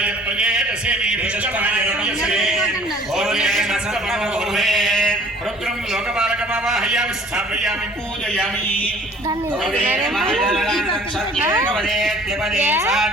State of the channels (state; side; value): normal; both; correlation 0.52